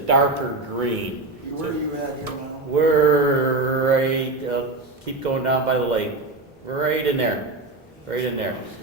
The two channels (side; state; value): left; quieter; 3.3 dB